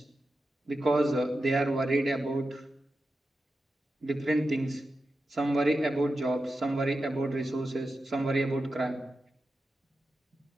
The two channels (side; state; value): both; normal; correlation 0.91